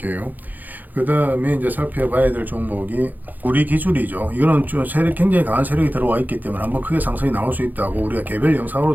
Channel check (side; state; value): left; late; 0.084 ms